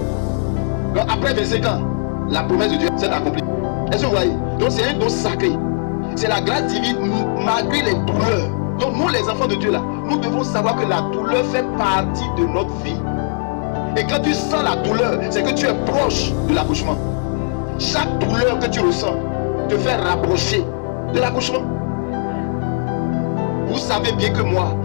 Donc après 25 ans, la promesse de Dieu s'est accomplie. Est-ce que vous voyez? Donc c'est un don sacré. C'est la grâce divine malgré les douleurs. Donc nous les enfants de Dieu là, nous devons savoir que la douleur fait partie de notre vie. Et quand tu sens la douleur, c'est que tu es proche de l'accouchement. Chaque douleur que tu ressens te fait rapprocher de l'accouchement. Vous savez bien que moi,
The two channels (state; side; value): silent; right; digital silence